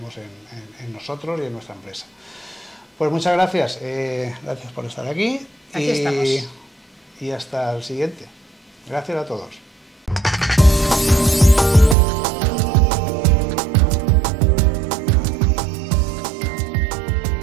en nosotros y en nuestra empresa. Pues muchas gracias, gracias por estar aquí. Aquí estamos. Y hasta el siguiente. Gracias a todos.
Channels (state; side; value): drops out; left; at 12.0 s